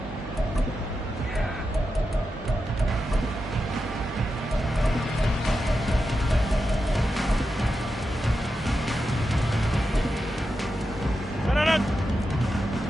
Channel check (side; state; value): both; normal; correlation 0.89